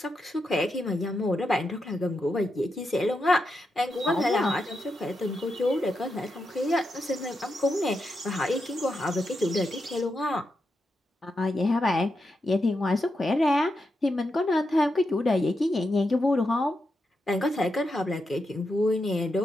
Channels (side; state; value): both; normal; correlation 0.85